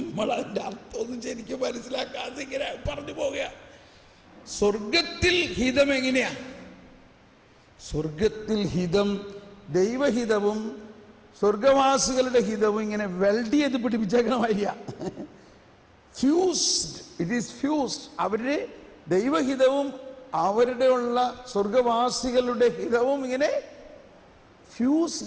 അർത്ഥമൊന്നും ശരിക്കും മനസ്സിലാക്കാതെ ഇങ്ങനെ പറഞ്ഞു പോവുക. സ്വർഗത്തിൽ ഹിതം എങ്ങനെയാ? സ്വർഗത്തിൽ ഹിതം, ദൈവഹിതവും സ്വർഗവാസികളുടെ ഹിതവും ഇങ്ങനെ വെൽഡ് ചെയ്ത് പിടിപ്പിച്ചേക്കണമായിരിക്കുക. Fused, it is fused. അവരുടെ ദൈവഹിതവും അവരുടെ ഉള്ള സ്വർഗവാസികളുടെ ഹിതവും ഇങ്ങനെ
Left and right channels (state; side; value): identical; both; correlation 1.00